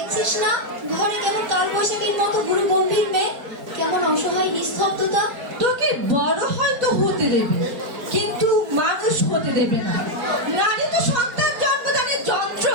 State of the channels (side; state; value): left; late; 4.4 ms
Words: না ঘরে কেমন কাল বৈশাখীর মতো গুরু গম্ভীর মেয়ে, কেমন অসহায় নিস্তব্ধতা। তোকে বড় হয়তো হতে দেবে, কিন্তু মানুষ হতে দেবে না। নারী তো সন্তান জন্মদানের যন্ত্র,